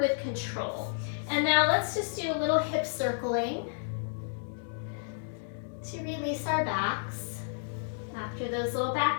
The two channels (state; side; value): silent; right; digital silence